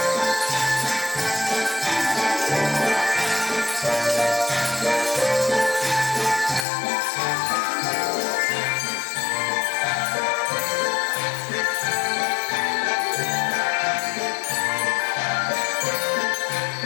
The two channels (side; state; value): right; drops out; at 6.7 s